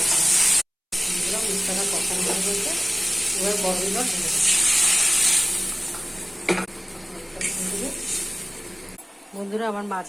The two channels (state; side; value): identical; both; correlation 1.00